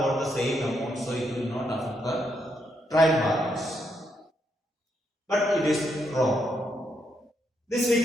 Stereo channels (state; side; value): normal; both; correlation 0.78